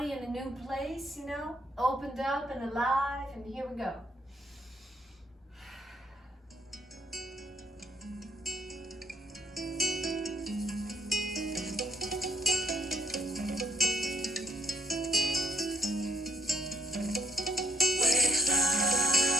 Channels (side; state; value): both; normal; correlation 0.71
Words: in a new place, you know, opened up and alive, and here we go.